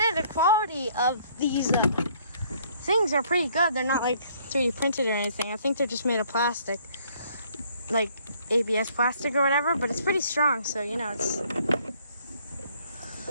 the quality of these things are pretty good. They're not like 3D printed or anything. I think they're just made of plastic, like ABS plastic or whatever. But it's pretty strong, so you know it's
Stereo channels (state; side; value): inverted; both; correlation -0.62